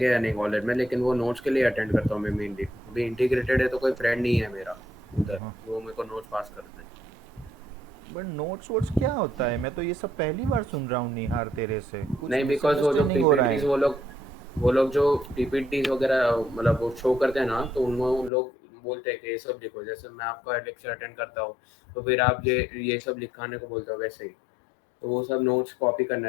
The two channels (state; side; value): drops out; right; at 18.3 s